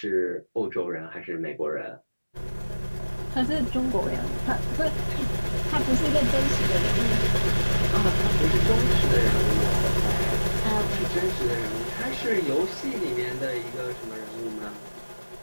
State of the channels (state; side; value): inverted; both; correlation -1.00